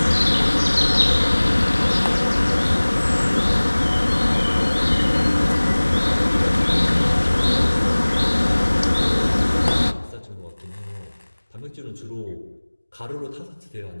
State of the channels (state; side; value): inverted; both; correlation -1.00